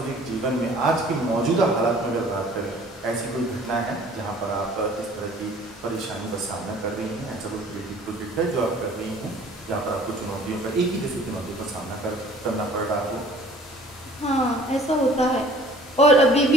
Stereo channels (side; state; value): both; normal; correlation 0.51